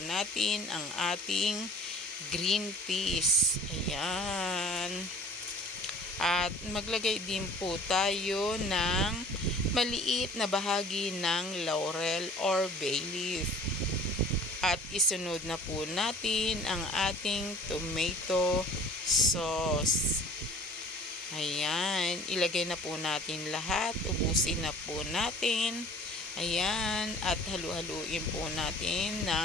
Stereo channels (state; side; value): normal; both; correlation 0.48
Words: natin ang ating green peas. Ayan. At maglagay din po tayo ng maliit na bahagi ng laurel or bay leaf. At isunod na po natin ang ating tomato sauce. Ayan, ilagay na po natin lahat. Ubusin na po natin. Ayan, at halu-haluin po natin